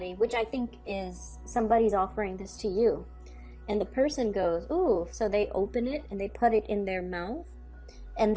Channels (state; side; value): identical; both; correlation 1.00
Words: which I think is somebody's offering this to you. And the person goes, ooh, so they open it and they put it in their mouth, and